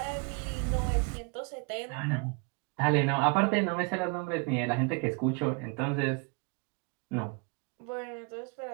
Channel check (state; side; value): quieter; left; 33.5 dB